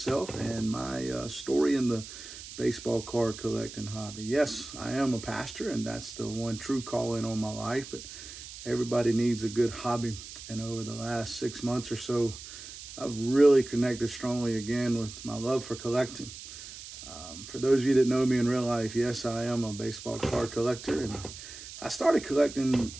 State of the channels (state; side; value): noise; right; hiss, 13 dB below the sound